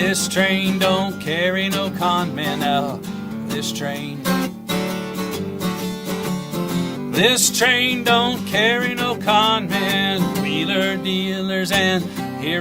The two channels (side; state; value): both; identical; correlation 1.00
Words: don't carry no con men. Now, this train don't carry no con men. Wheeler dealers and